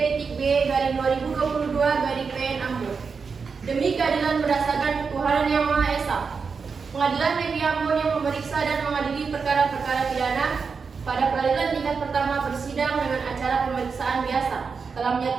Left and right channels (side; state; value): left; quieter; 5.3 dB